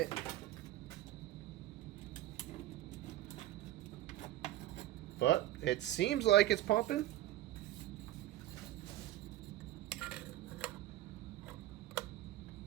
But it seems like it's pumping.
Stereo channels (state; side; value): quieter; left; 14.4 dB